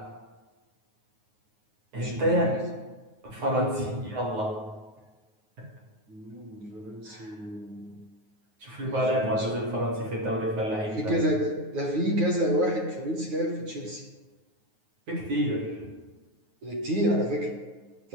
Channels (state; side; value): late; left; 9.5 ms